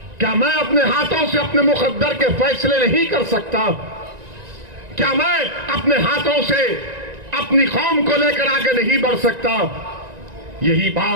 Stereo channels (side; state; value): left; late; 1.9 ms